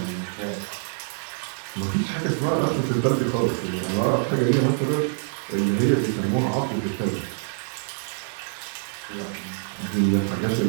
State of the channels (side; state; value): left; silent; digital silence